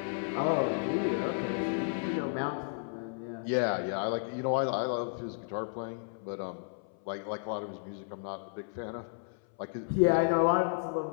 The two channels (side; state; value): right; silent; 56 dB below the other